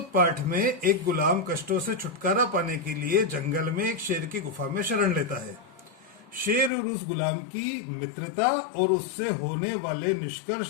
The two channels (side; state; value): right; drops out; at 6.7 s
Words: पाठ में एक गुलाम कष्टों से छुटकारा पाने के लिए जंगल में एक शेर की गुफा में शरण लेता है। शेर और उस गुलाम की मित्रता और उससे होने वाले